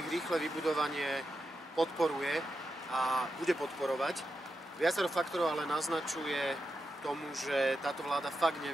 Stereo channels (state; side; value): normal; both; correlation 0.88